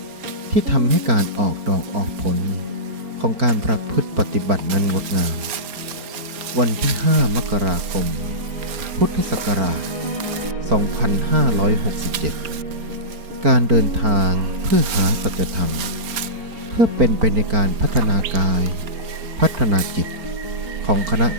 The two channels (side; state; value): left; late; 4.4 ms